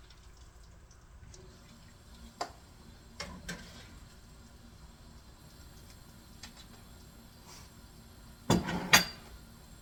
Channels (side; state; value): both; identical; correlation 1.00